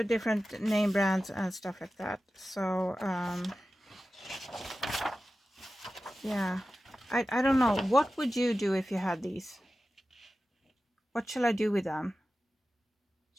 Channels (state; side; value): normal; both; correlation 0.94